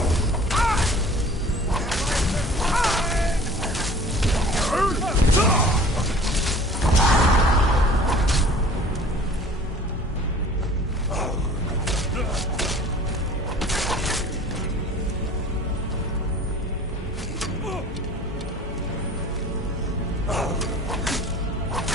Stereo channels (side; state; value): both; normal; correlation 0.47